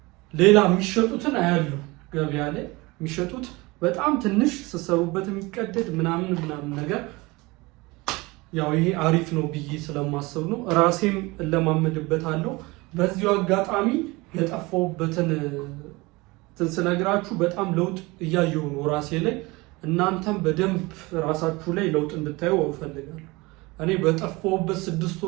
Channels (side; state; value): left; quieter; 23.3 dB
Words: ሌላ የሚሸጡትን አያሉ ገበያ ላይ የሚሸጡት በጣም ትንሽ ስትሰሩበት የሚቀደድ ምናምን ነገር ያው ይሄ አሪፍ ነው ብዬ ስለማስብ ነው። ራሴም እለማመድበታለሁ። በዚሁ አጋጣሚ የጠፋሁበትን ስነግራችሁ በጣም ለውጥ እያየሁ ነው ራሴ ላይ። እናንተም በደንብ ራሳችሁ ላይ ለውጥ እንድታዩ እፈልጋለሁ። እኔ በጠፋሁበት 6